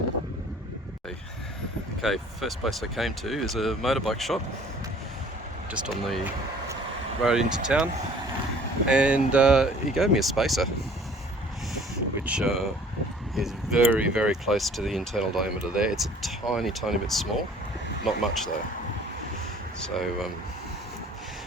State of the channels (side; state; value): both; normal; correlation 0.52